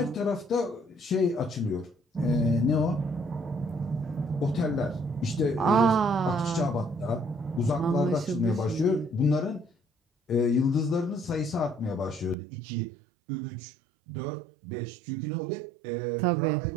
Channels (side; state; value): left; drops out; at 12.4 s